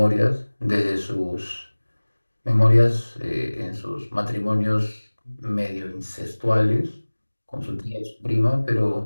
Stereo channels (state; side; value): inverted; both; correlation -1.00